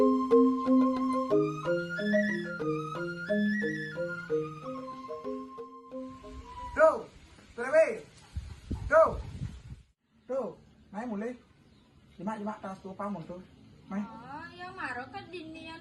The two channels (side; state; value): both; identical; correlation 1.00